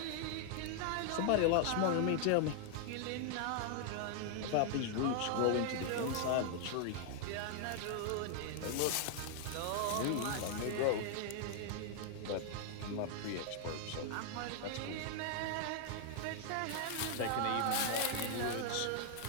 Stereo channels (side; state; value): both; different; correlation 0.00